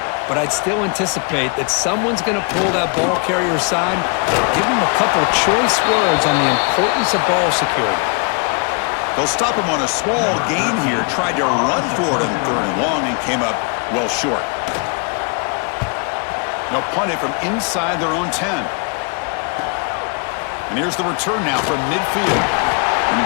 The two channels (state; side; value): quieter; right; 36.3 dB